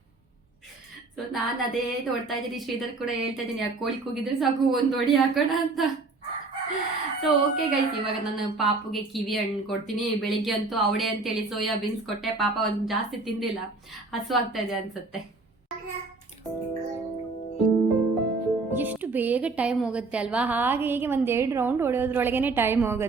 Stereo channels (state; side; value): quieter; left; 3.6 dB